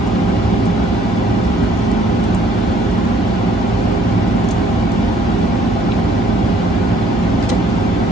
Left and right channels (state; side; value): noise; right; hum, 9 dB below the sound